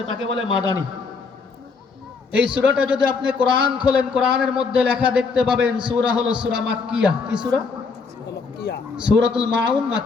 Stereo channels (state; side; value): quieter; right; 4.8 dB